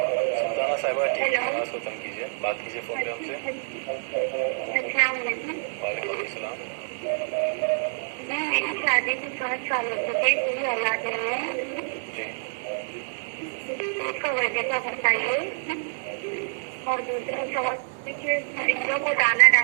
صاحبہ ٹھیک ہے آواز کو کم کیجیے، بات کیجیے فون پہ ہم سے. السلام علیکم. وعلیکم السلام. میں شادی کو 5 سال ہو چکے، کوئی اولاد نہیں ہے. جی اس کا وجہ کا بتائیے. اور دوسرا سوال کہ پرندوں کو دانا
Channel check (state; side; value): silent; left; 60 dB below the other